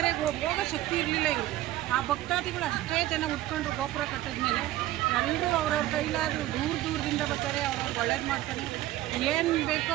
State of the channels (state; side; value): quieter; left; 15.1 dB